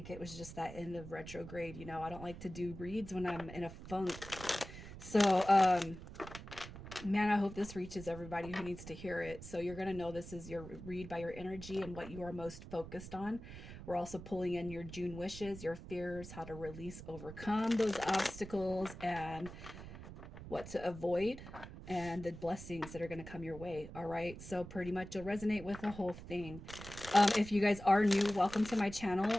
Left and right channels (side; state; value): right; noise; rumble, 13 dB below the sound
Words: it was just that end of retrograde. I don't like to do reads when I'm in a funk. So man, I hope this reaches everybody who needs to hear it. So you're going to know this is your read by your energy and what you are most focused on. We're also pulling in your June wishes, your fears, how to release, overcome those obstacles, and what to avoid, and the blessings that are going to come your way. All right. So pretty much you'll resonate with the whole thing. If you guys are new, welcome to my channel.